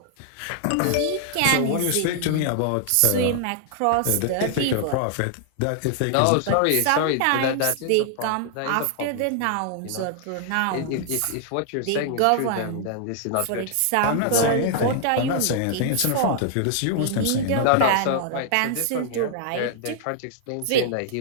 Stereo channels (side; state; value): both; different; correlation 0.00